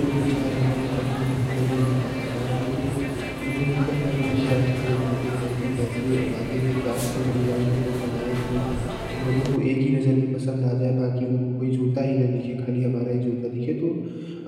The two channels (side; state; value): both; identical; correlation 1.00